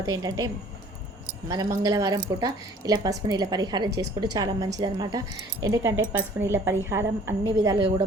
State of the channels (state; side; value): normal; both; correlation 0.53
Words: ఏంటంటే మన మంగళవారం పూట ఇలా పసుపు నీళ్ళ పరిహారం చేసుకుంటే చాలా మంచిదన్నమాట. ఎందుకంటే పసుపు నీళ్ళ పరిహారం అన్ని విధాలుగా